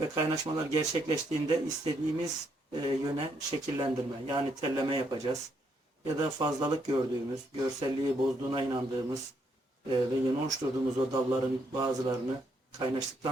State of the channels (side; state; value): both; normal; correlation 0.74